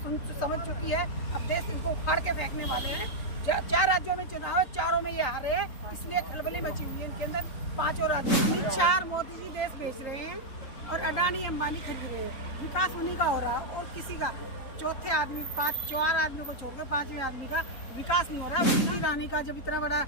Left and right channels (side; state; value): right; late; 3.9 ms